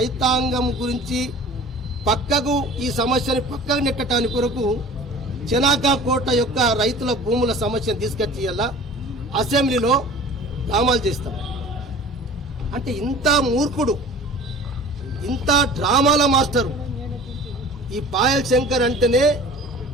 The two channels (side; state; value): both; normal; correlation 0.43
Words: గురించి పక్కకు ఈ సమస్యని పక్కకు నెట్టడానికి కొరకు చెనాకా కోట యొక్క రైతుల భూముల సమస్యను తీసుకొచ్చి ఇలా అసెంబ్లీలో డ్రామాలు చేస్తాం. అంటే ఇంత మూర్ఖుడు, ఇంత డ్రామాల మాస్టరు ఈ పాయల్ శంకర్ అంటేనే